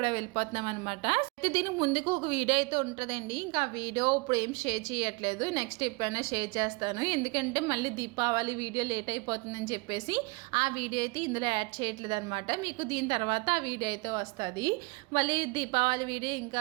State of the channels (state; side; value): quieter; left; 26.8 dB